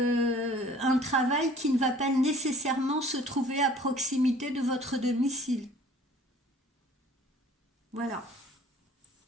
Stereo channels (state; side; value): normal; both; correlation 0.51